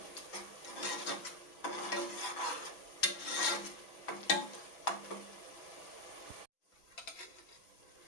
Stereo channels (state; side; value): late; right; 6.0 ms